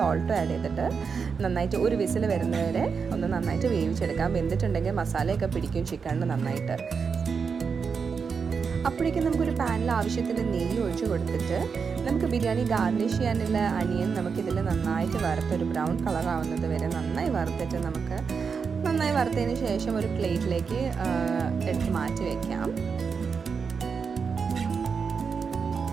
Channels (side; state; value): left; quieter; 5.7 dB